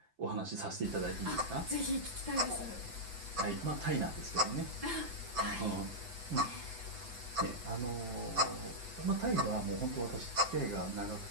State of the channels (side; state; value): left; late; 7.8 ms